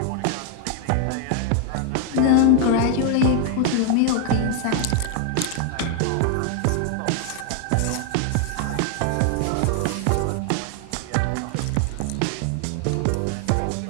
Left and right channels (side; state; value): both; different; correlation 0.00